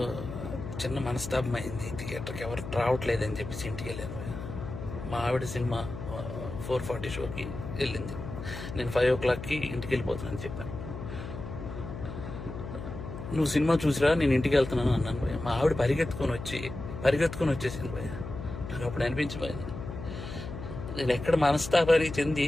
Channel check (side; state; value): left; noise; hum, 9 dB below the sound